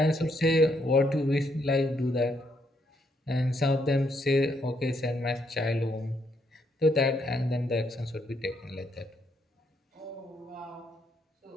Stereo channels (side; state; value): both; normal; correlation 0.75